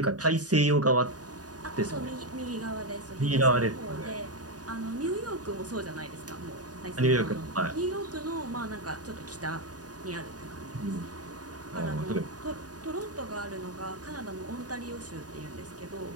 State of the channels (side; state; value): left; late; 0.68 ms